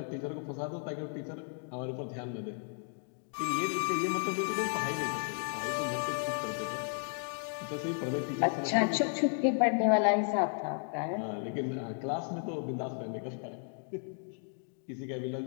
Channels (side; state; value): right; silent; 55 dB below the other